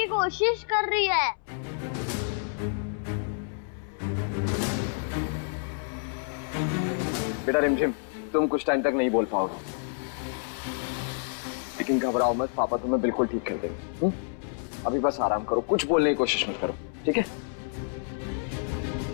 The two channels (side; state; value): right; silent; 59 dB below the other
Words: कोशिश कर रही है। बेटा रिमझिम, तुम कुछ टाइम तक नहीं बोल पाओगे, लेकिन घबराओ मत, पापा तुम्हें बिल्कुल ठीक कर देंगे। अभी बस आराम करो, कुछ बोलने की कोशिश मत करो, ठीक है?